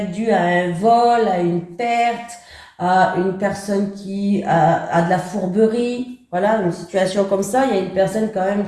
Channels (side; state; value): both; identical; correlation 1.00